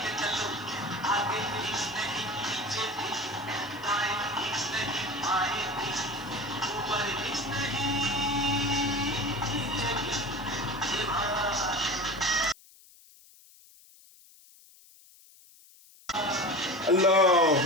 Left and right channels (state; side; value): noise; left; hiss, 25 dB below the sound